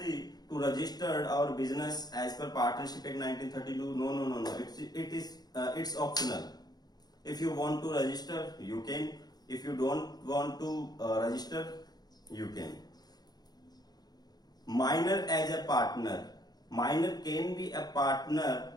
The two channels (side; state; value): right; late; 0.19 ms